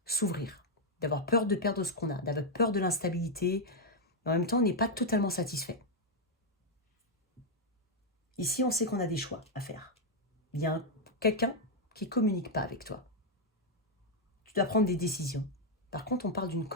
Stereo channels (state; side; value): normal; both; correlation 0.00